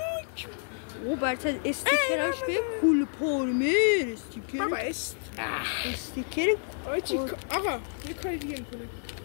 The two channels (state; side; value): silent; right; digital silence